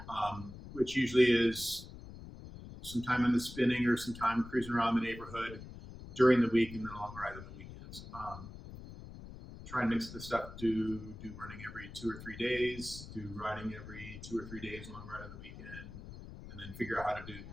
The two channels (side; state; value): left; noise; rumble, 13 dB below the sound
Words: Which usually is some time in the spinning or some time cruising around the neighborhood during the week, and then a long ride on the weekends. Try and mix the stuff. Do running every 2 or 3 days. Do riding every 2 or 3 days. Long ride on the weekend. And then figure out how to do the